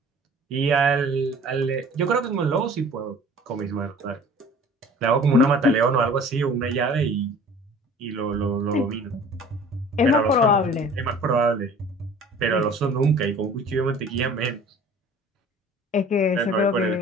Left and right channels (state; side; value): normal; both; correlation 0.47